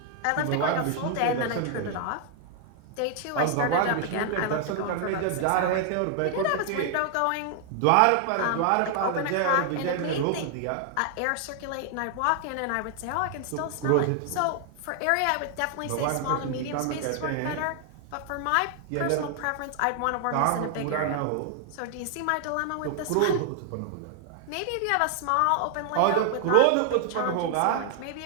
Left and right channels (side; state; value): both; different; correlation 0.00